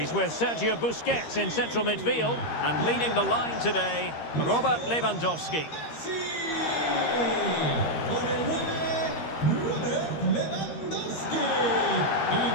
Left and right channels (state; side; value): late; right; 13 ms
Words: with Sergio Busquets in central midfield. And leading the line today, Robert Lewandowski.